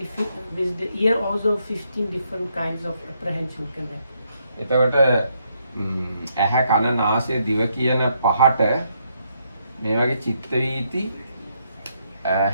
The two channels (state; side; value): inverted; both; correlation -0.75